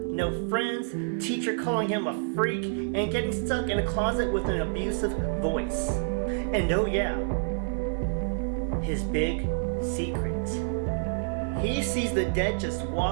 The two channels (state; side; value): silent; left; 59 dB below the other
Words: No friends, teacher calling him a freak, and getting stuck in a closet with an abusive voice. And oh yeah, his big secret. He sees the dead just